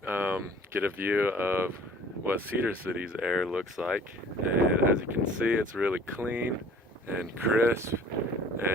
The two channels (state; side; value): normal; both; correlation 0.50